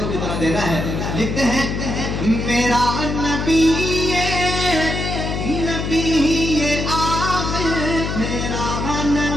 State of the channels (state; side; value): noise; left; hum, 3 dB below the sound